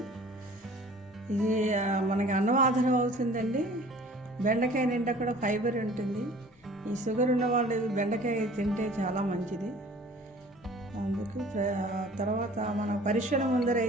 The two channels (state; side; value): normal; both; correlation 0.49